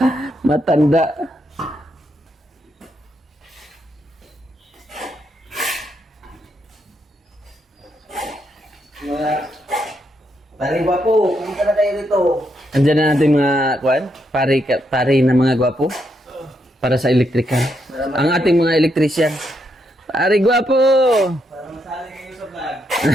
Matanda. Pare Guapo, pumunta na tayo rito. Andiyan na natin mga Kuan. Pare na mga gwapo. Para sa electrical. Ang ating mga electrician. Pare gwapo! Para masali kayo sa vlog.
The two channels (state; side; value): normal; both; correlation 0.79